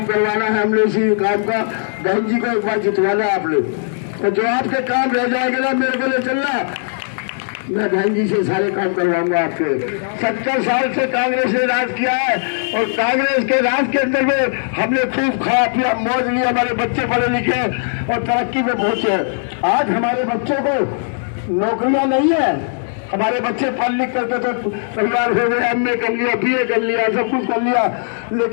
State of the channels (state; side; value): silent; right; 67 dB below the other